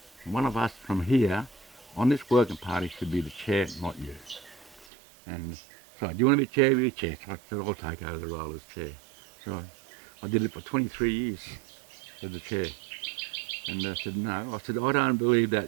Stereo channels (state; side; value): drops out; left; at 4.9 s